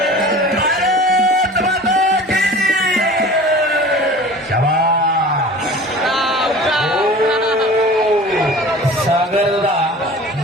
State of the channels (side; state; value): both; normal; correlation 0.40